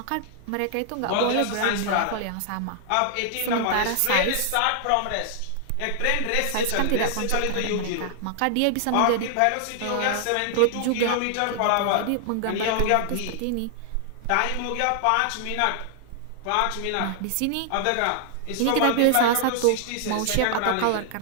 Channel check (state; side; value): different; both; correlation 0.00